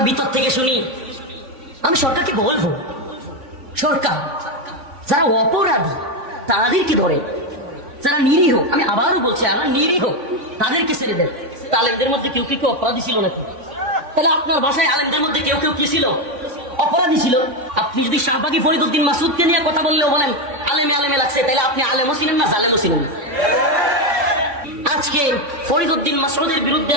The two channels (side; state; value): left; late; 3.5 ms